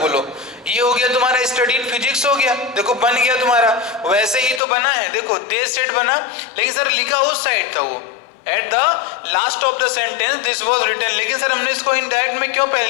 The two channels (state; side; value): drops out; right; at 4.6 s